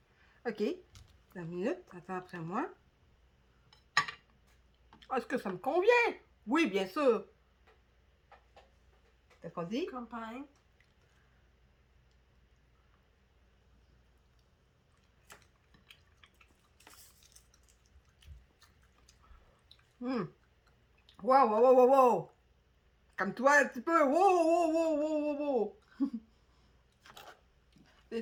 OK. 2 minutes, attends après moi. Est-ce que ça me convient? Oui, bien sûr. Qu'est-ce qu'on dit? Campagne. Wow, wow, wow, wow, wow. Comme toi, un petit peu. Wow, wow, wow, wow, wow, wow.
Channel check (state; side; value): identical; both; correlation 1.00